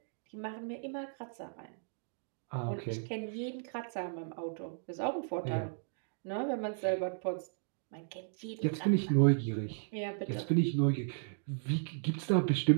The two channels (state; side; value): silent; left; digital silence